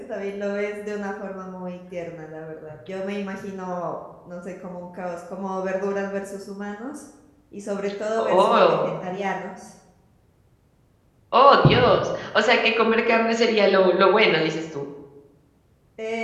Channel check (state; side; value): identical; both; correlation 1.00